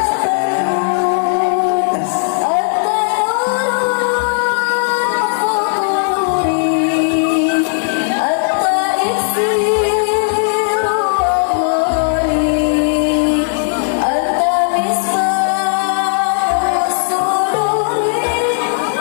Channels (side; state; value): right; silent; digital silence